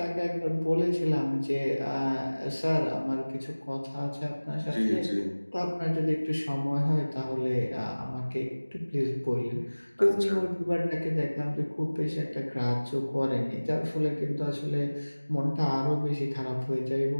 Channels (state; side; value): inverted; both; correlation -1.00